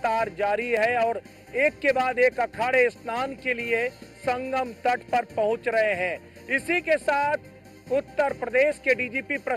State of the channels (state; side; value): identical; both; correlation 1.00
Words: जारी है और एक के बाद एक अखाड़े स्नान के लिए संगम तट पर पहुंच रहे हैं। इसी के साथ उत्तर प्रदेश के डीजीपी